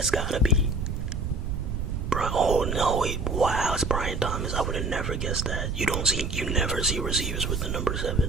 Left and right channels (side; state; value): right; noise; rumble, 2 dB below the sound